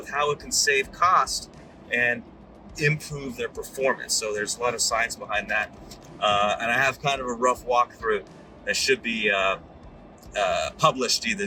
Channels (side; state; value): both; identical; correlation 1.00